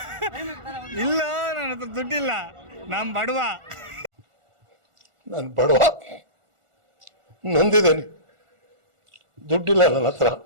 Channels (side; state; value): left; late; 1.4 ms